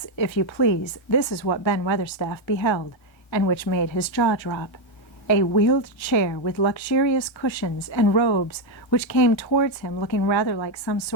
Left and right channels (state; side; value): late; right; 1.3 ms